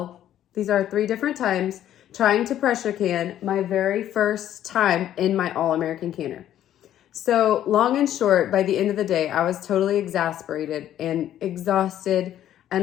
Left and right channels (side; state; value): right; quieter; 11.6 dB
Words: These are 3 different times trying to pressure can my very first time in my all-American canner. So long and short, by the end of the day, I was totally exasperated and exhausted